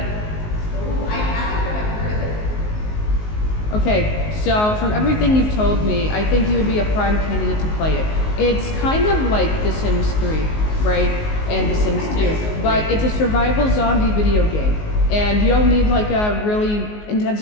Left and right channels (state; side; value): late; right; 19 ms